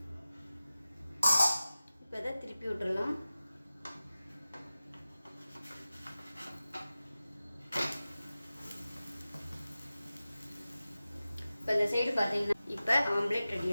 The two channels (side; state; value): both; inverted; correlation -0.96